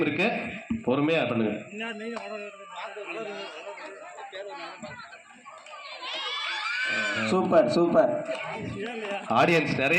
இருக்கு, பொறுமையா பண்ணுங்க. Super super. ஆடியன்ஸ்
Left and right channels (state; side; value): identical; both; correlation 1.00